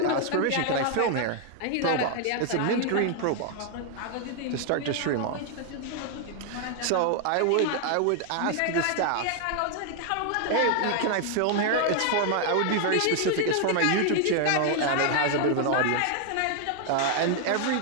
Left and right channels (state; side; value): different; both; correlation 0.00